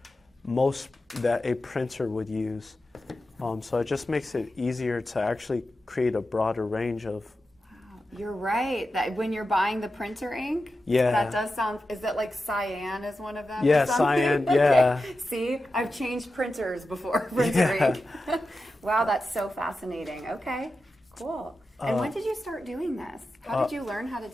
a printer would use. So it just makes it easier to actually create a broader range of. Wow, you're right. That when you're buying the printer ink, yeah, that does sound. Is that like cyan is one of them? Yeah, cyan. Yeah. Okay. See, I've changed printers before. Printer ink. Wow, that's so fascinating. Okay, cool. And when did you start doing this? How did you learn how to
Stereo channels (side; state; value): both; normal; correlation 0.91